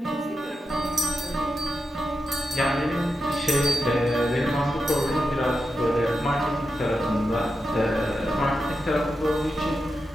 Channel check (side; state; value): both; normal; correlation 0.89